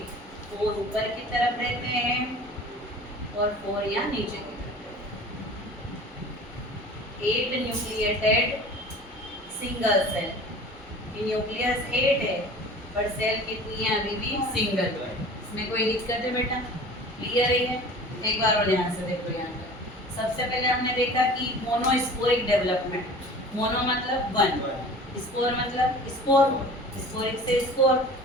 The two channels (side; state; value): both; normal; correlation 0.42